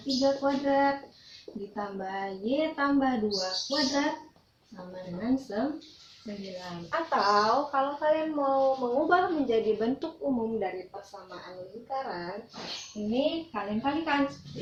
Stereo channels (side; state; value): both; identical; correlation 1.00